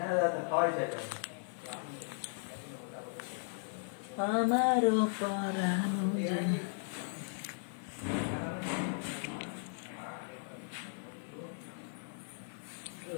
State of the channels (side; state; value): right; silent; 53 dB below the other